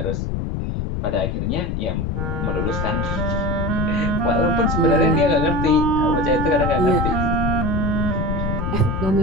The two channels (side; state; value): left; noise; rumble, 1 dB below the sound